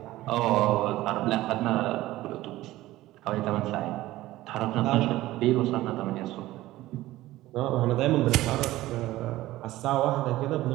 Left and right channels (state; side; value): quieter; left; 16.5 dB